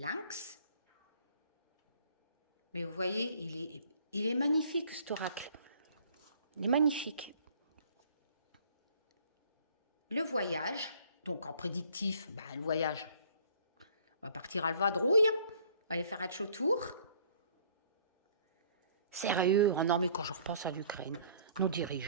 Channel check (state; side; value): inverted; both; correlation -0.56